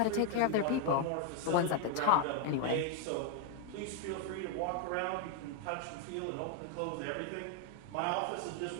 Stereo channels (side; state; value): both; different; correlation 0.00